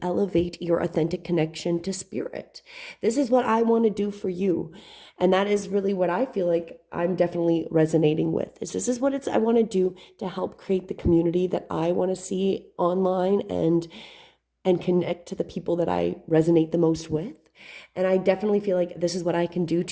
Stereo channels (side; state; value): both; identical; correlation 1.00